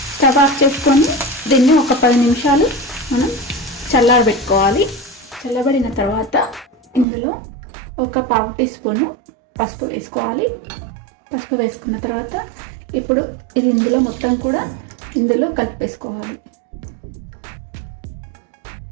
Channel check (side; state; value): left; drops out; at 7.1 s